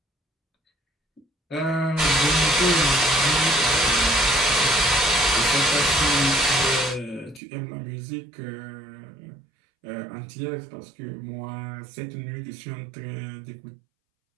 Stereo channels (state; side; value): drops out; left; at 7.4 s